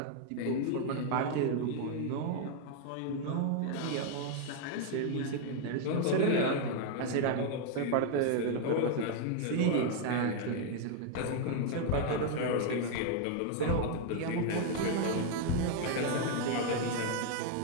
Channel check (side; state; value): both; different; correlation 0.00